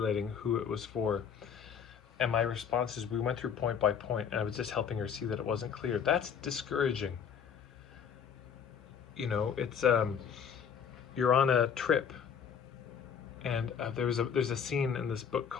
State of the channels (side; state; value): right; quieter; 7.4 dB